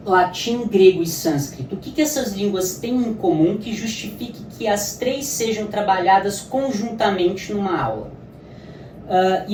latim, grego e sânscrito? O que essas línguas têm em comum que justifique que as três sejam trabalhadas conjuntamente numa aula?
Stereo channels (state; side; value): identical; both; correlation 1.00